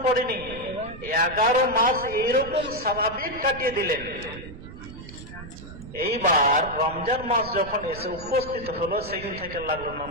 পড়েনি, 11 মাস এইরকম স্বাভাবিক কাটিয়ে দিলেন। এইবার রমজান মাস যখন এসে উপস্থিত হলো, সেদিন থেকে লাগলো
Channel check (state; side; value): noise; right; rumble, 13 dB below the sound